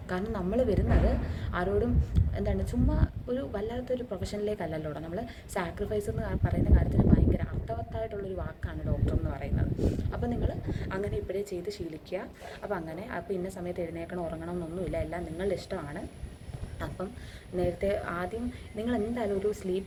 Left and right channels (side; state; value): both; identical; correlation 1.00